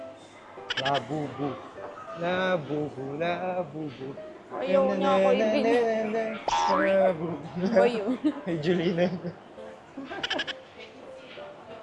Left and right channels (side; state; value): both; identical; correlation 1.00